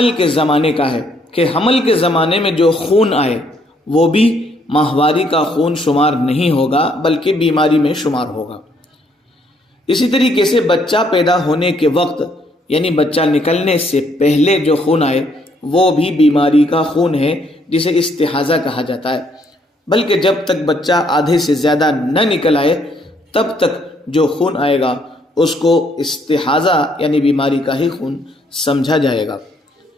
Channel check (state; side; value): normal; both; correlation 0.69